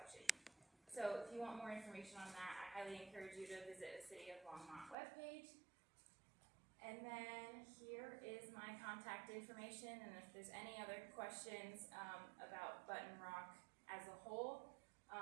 So if you want more information on that, I highly encourage you to visit the City of Longmont webpage. And then here is my contact information, and if there's any other questions about Button Rock as a whole,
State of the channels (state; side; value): drops out; left; at 5.0 s